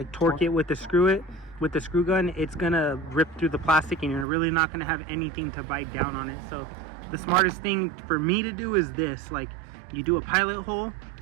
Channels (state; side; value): drops out; left; at 4.2 s